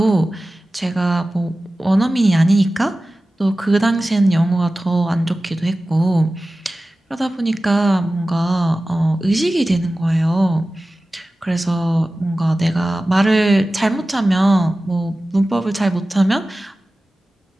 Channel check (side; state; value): both; normal; correlation 0.96